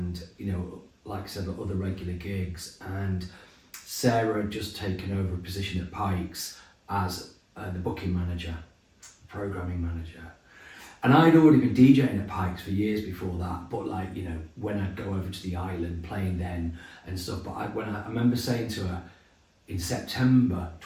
you know, like I said, other regular gigs. And Sarah had just taken over a position at Pikes as the booking manager, programming manager, and I'd already been DJing at Pikes for years before that. But like, you know, when I'd go over to the island playing then and stuff. But I remember saying to her in September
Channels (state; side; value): identical; both; correlation 1.00